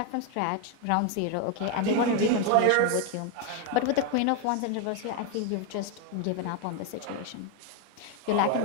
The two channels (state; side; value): different; both; correlation 0.01